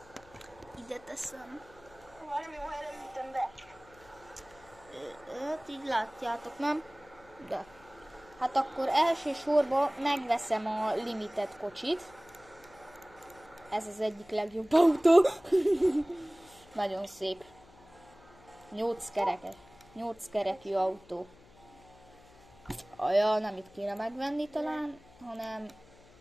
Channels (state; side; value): noise; left; hum, 25 dB below the sound